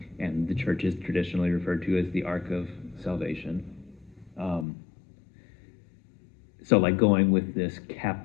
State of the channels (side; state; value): right; drops out; at 4.7 s